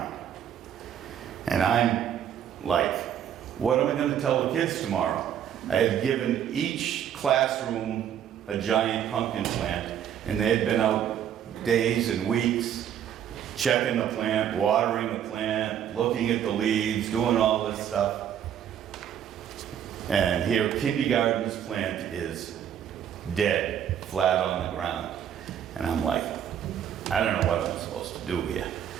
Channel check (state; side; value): quieter; left; 9.6 dB